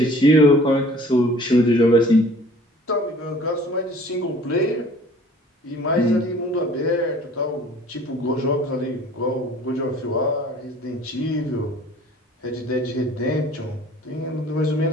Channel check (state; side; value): normal; both; correlation 0.50